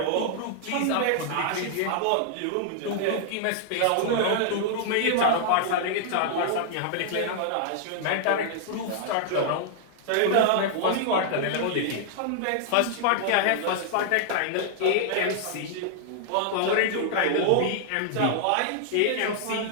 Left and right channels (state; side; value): different; both; correlation -0.01